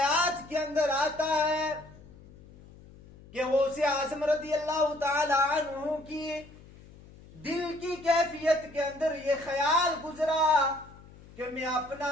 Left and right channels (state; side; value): noise; left; hum, 21 dB below the sound